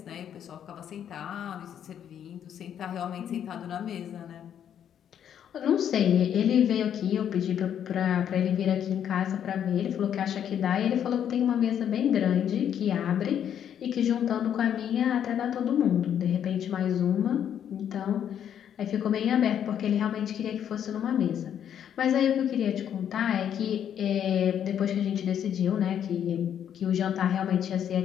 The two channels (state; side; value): quieter; right; 9.3 dB